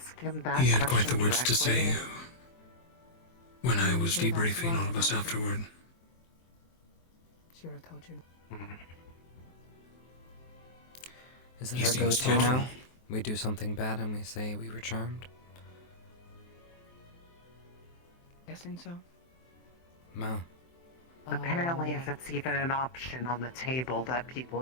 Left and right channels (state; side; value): late; right; 23 ms